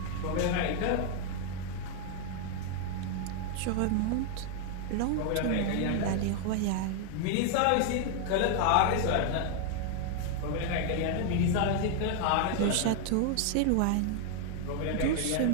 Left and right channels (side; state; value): both; different; correlation 0.00